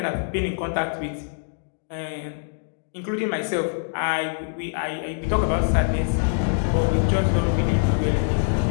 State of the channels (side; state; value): right; silent; digital silence